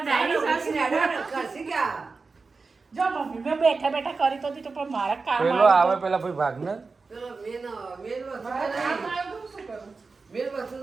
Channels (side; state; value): left; quieter; 4.2 dB